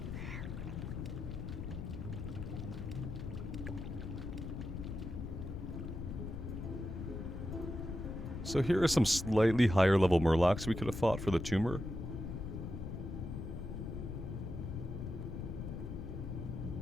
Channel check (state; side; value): noise; left; rumble, 6 dB below the sound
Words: So here are some slightly higher level murlocs we could have fought for the tumor.